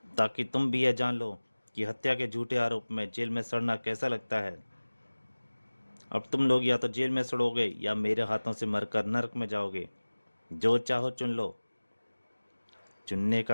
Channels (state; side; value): inverted; both; correlation -1.00